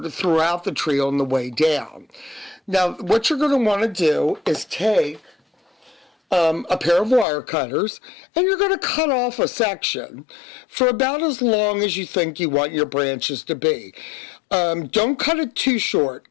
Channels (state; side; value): drops out; right; at 7.2 s